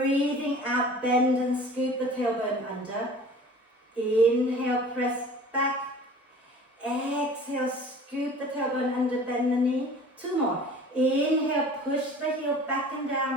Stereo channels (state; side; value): normal; both; correlation 0.44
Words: out, bend and scoop the tailbone under. Inhale, press back. Exhale, scoop the tailbone under, bend the knee. Two more. Inhale, push the heel back and